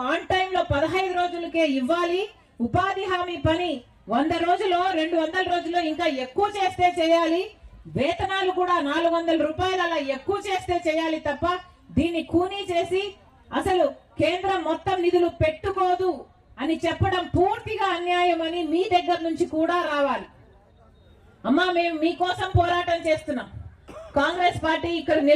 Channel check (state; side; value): identical; both; correlation 1.00